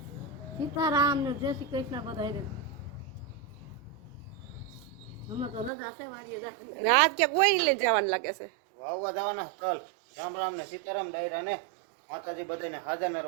સીતારામ ને જય શ્રી કૃષ્ણ બધાને. હમણાં તો રજા છે વાડીએ જા. અને આજ ક્યાંક કોઈ લઈને જવાનું લાગે છે. વાવવા જવાના તલ. રામ રામ ને સીતારામ ડાયરા ને માતાજી બધાને હાજર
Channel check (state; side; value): drops out; left; at 5.7 s